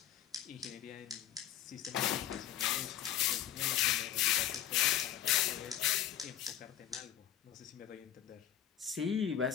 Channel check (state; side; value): quieter; right; 10.9 dB